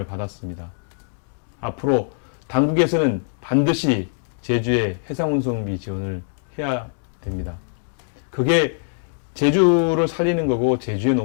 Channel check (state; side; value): silent; right; digital silence